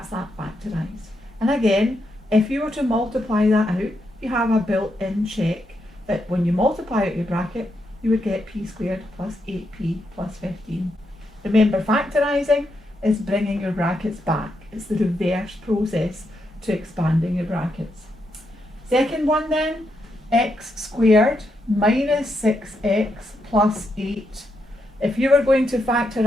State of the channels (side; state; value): both; normal; correlation 0.82